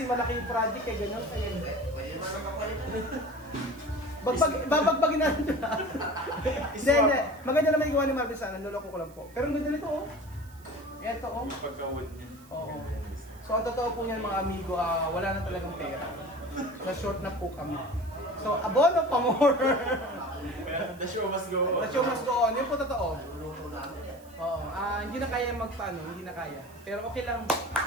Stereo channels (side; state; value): right; noise; hiss, 25 dB below the sound